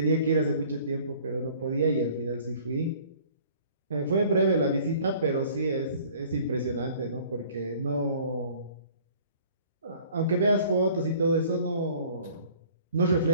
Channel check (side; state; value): both; inverted; correlation -0.53